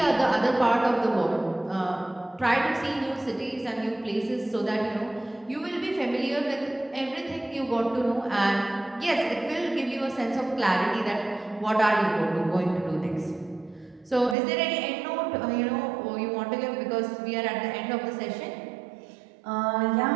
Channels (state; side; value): drops out; left; at 14.4 s